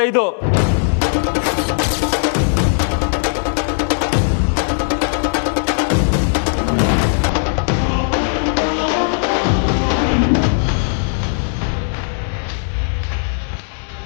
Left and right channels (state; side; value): silent; right; digital silence